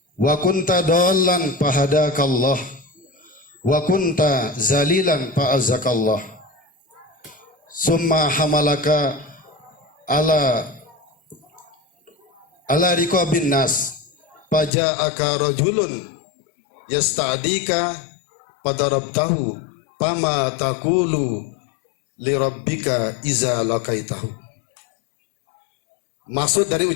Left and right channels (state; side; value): drops out; right; at 14.7 s